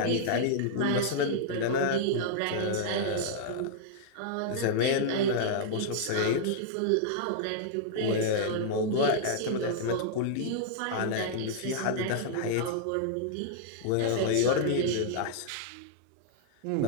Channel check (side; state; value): both; different; correlation -0.01